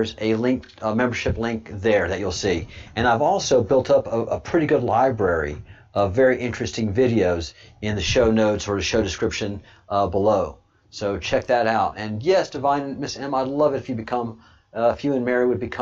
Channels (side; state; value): both; identical; correlation 1.00